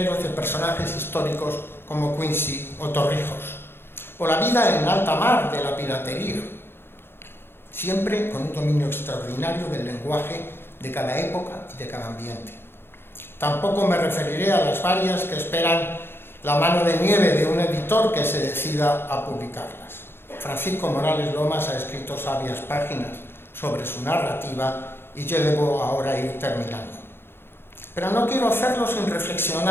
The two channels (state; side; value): late; right; 0.11 ms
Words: de personajes históricos como Quincy o Torrijos, o la vida en alta mar de la piratería, siempre con un dominio extraordinario del lenguaje de cada época y de cada ambiente. Tampoco me referiré a las varias que esperan la mano de nieve de un editor que se decida a publicarlas. Francisco Morales Lomas ha escrito sabias páginas sobre su narrativa y yo debo ahora ir terminando. Pero no quiero hacerlo sin